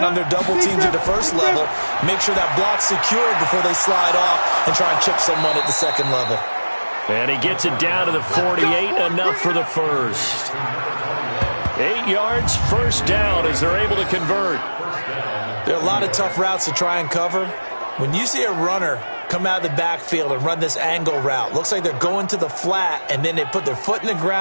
on their double teams at the first level, make sure that block's secured before they slide off and try and chip someone at the second level. And he gets it down to the 48, enough for the first. 8 yards, first down as they're able to convert. There are a lot of tough routes to try and cover. When you see a runner come out of the backfield and run this angle route, looks like they're going to the flat, and then they put their foot in the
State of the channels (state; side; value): inverted; both; correlation -1.00